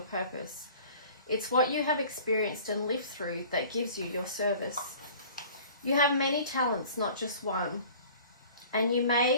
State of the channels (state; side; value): inverted; both; correlation -0.47